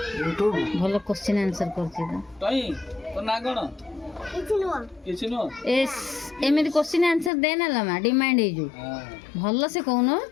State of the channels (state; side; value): drops out; right; at 7.3 s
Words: यूट्यूब भलो क्वेश्चन आंसर करछि तई तो ना गण किछि नो एस एमेदी क्वेश्चन आंसर दे ना लमा डिमांड हे जो भलो से कहनो